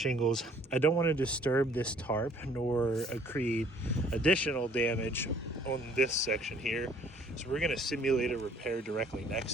I don't want to disturb this tarp nor create additional damage on this section here, so we're going to simulate a repair directly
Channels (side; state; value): both; normal; correlation 0.58